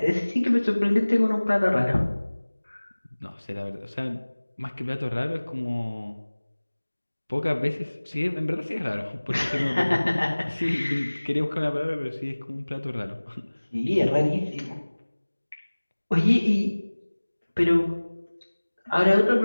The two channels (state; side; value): inverted; both; correlation -1.00